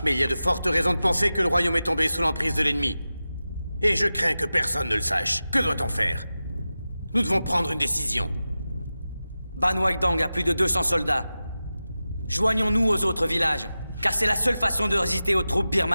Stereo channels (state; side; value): inverted; both; correlation -0.94